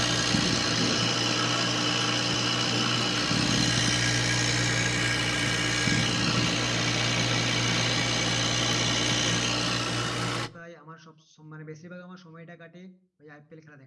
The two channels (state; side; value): identical; both; correlation 1.00